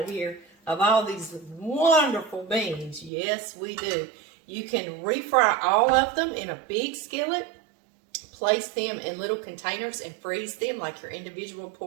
here of all these wonderful beans. Yes, we do. You can refry all of them in a big skillet. Place them in little containers and freeze them like your individual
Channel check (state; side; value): drops out; left; at 3.1 s